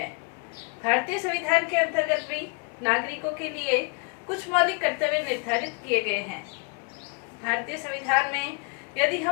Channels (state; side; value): quieter; right; 34.3 dB